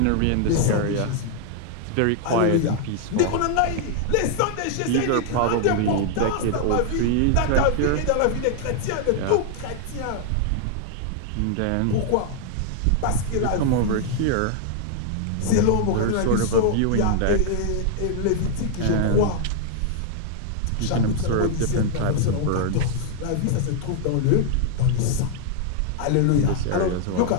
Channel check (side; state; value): both; different; correlation 0.00